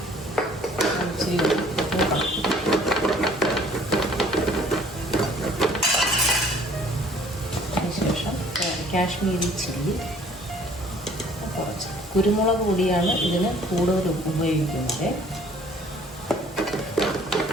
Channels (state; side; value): normal; both; correlation 0.56